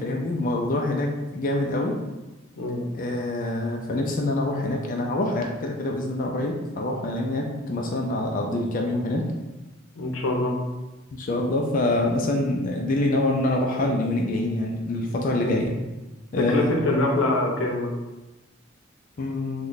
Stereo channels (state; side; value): normal; both; correlation 0.43